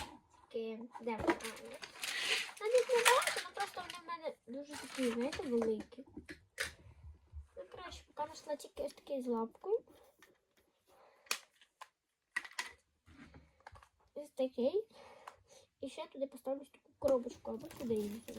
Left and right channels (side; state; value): both; identical; correlation 1.00